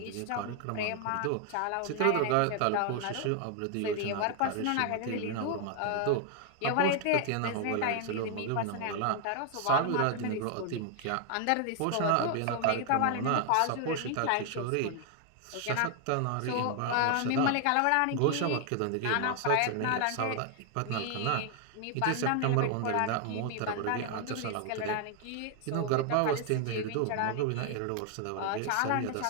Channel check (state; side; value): different; both; correlation 0.00